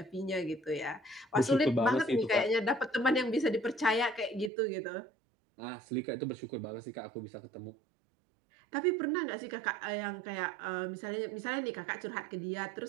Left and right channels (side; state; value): left; drops out; at 4.5 s